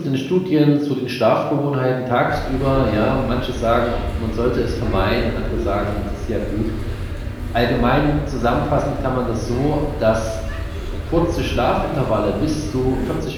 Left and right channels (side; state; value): both; identical; correlation 1.00